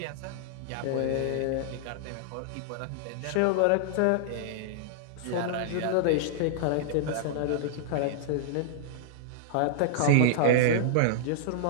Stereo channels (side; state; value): both; different; correlation -0.01